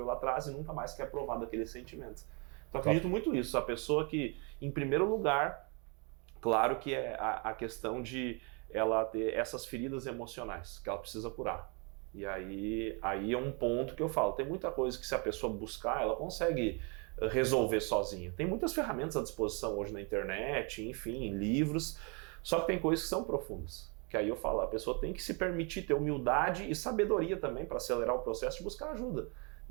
lá atrás e nunca mais quer provar daqueles sentimentos. Então, acredito muito nisso. A pessoa que, em primeiro lugar, claro que é a questão de ela ter essas feridas emocionais que ela precisa curar. E aí é um ponto que eu falo. Tem muita coisa que se a pessoa buscar, ela consegue resolver sozinha. Tem muitas ferramentas à disposição hoje na internet, enfim, livros. Só que tem coisas que são profundas. Que aí eu falo, a pessoa tem que se permitir ter humildade e sabedoria também para acelerar o processo de buscar ajuda.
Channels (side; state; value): left; quieter; 33.4 dB